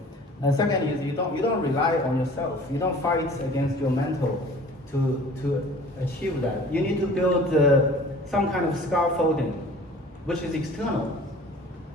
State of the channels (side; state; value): both; normal; correlation 0.46